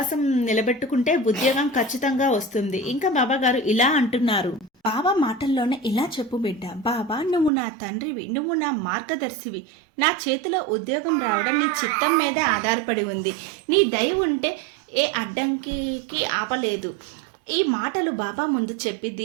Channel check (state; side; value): drops out; left; at 7.5 s